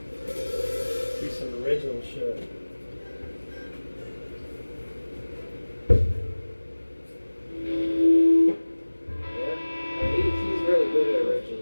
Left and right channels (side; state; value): both; inverted; correlation -1.00